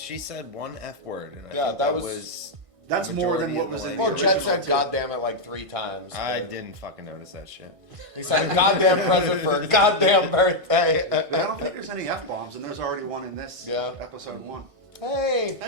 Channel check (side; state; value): left; late; 1.6 ms